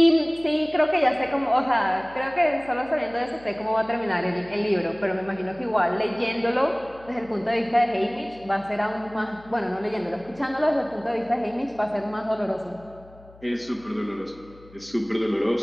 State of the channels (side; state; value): left; noise; hum, 23 dB below the sound